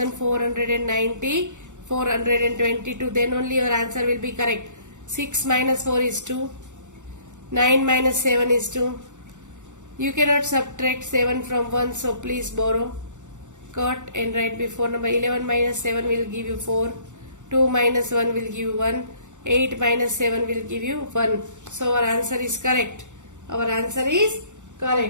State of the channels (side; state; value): left; late; 0.85 ms